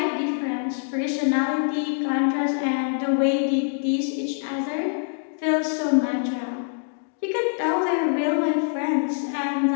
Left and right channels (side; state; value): right; silent; digital silence